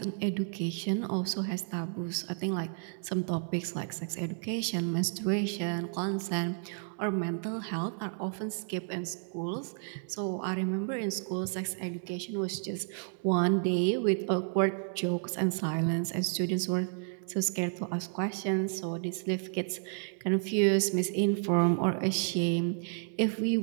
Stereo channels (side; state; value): left; silent; digital silence